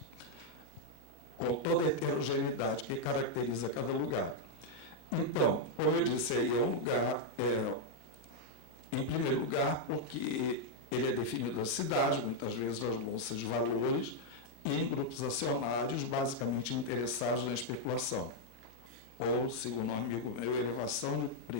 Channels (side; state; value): right; late; 13 ms